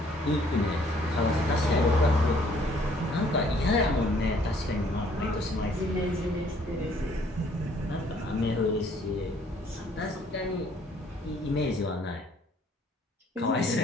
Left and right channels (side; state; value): both; normal; correlation 0.61